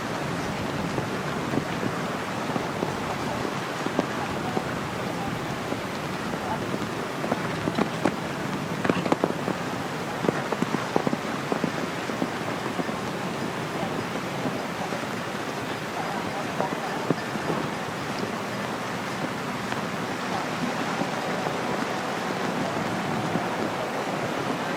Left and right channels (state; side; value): identical; both; correlation 1.00